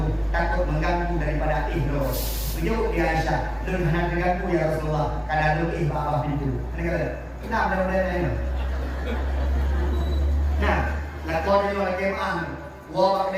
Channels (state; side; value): identical; both; correlation 1.00